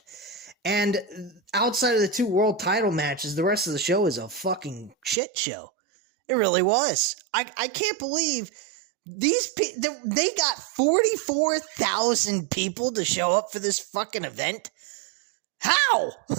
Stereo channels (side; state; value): left; drops out; at 5.2 s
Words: And outside of the 2 world title matches, the rest of the show is a fucking shit show. It really was. I can't believe these they got 44,000 people to show up for this fucking event. How?